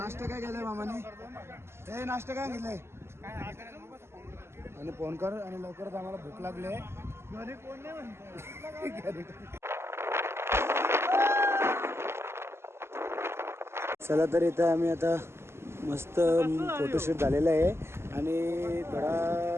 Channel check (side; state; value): left; late; 0.12 ms